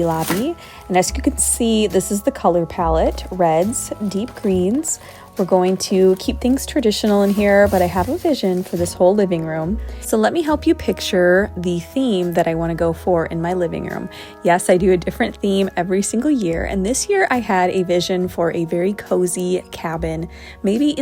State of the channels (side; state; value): both; identical; correlation 1.00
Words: Lobby. And as you can see, this is the color palette: reds, deep greens. We're going to keep things traditional in here, but I have a vision for this whole living room. So let me help you picture the theme that I want to go for in my living room. Yes, I do a different theme every single year, and this year I had a vision for a very cozy cabin, maybe